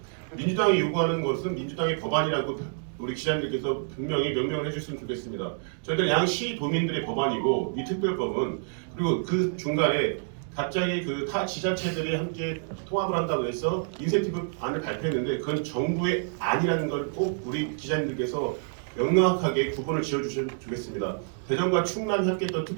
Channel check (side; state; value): left; silent; digital silence